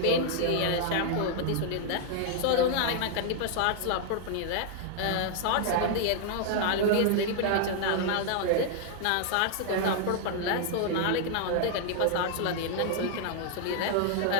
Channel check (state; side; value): different; both; correlation -0.01